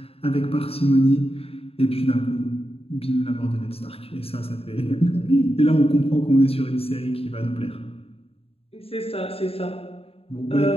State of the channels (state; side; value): late; right; 0.28 ms